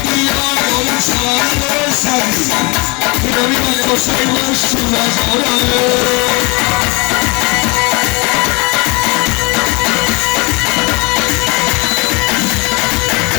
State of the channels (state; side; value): quieter; right; 28.1 dB